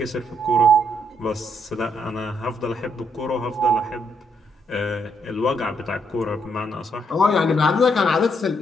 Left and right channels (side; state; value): both; normal; correlation 0.74